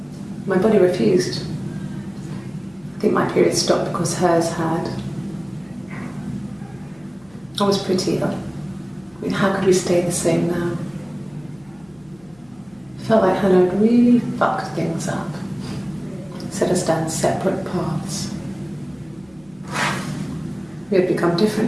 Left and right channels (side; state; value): left; noise; hum, 29 dB below the sound